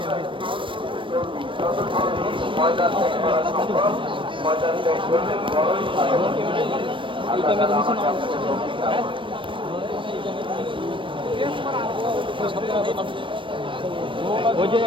ময়দান ত্যাগ করা সম্ভব ময়দান ত্যাগ করলে বড়ই ভালো ওই যে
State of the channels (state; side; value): late; left; 0.25 ms